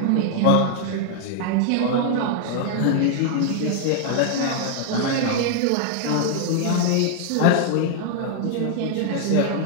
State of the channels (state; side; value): different; both; correlation 0.00